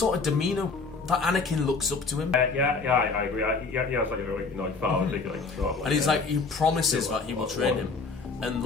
of demeanour that Anakin looks up to him. I agree. It's like a really father figure, and he's he promises that he will train him, and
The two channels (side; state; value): right; quieter; 4.3 dB